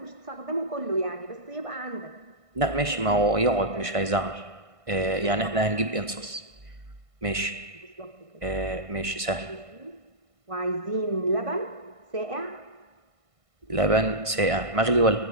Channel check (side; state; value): left; late; 1.5 ms